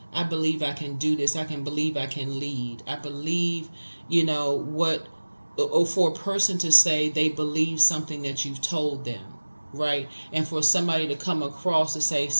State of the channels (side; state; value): both; inverted; correlation -1.00